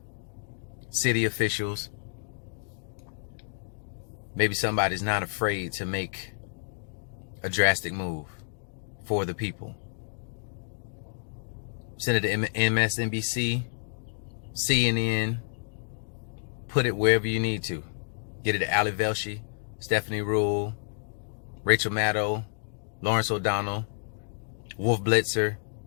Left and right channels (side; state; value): right; silent; digital silence